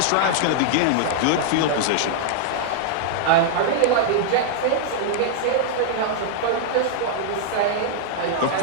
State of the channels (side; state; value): both; different; correlation -0.01